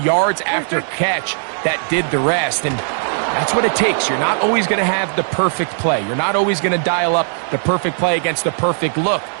after catch that did the rest, and that's what it takes. You're not always going to have the perfect play. You're not always going to dial up the perfect play against the perfect look.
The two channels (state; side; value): silent; left; digital silence